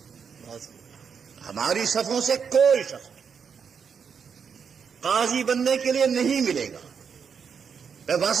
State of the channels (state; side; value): quieter; left; 6.6 dB